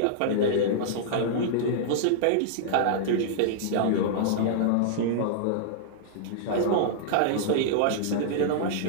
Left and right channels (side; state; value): both; different; correlation -0.02